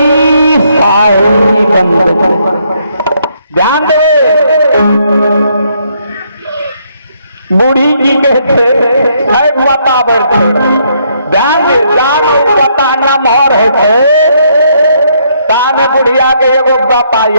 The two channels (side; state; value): both; inverted; correlation -0.71